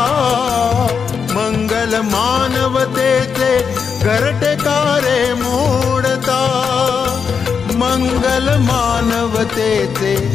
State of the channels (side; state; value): right; quieter; 6.2 dB